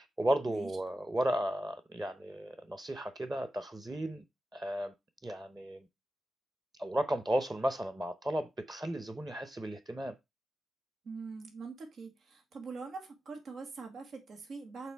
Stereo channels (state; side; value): normal; both; correlation 0.93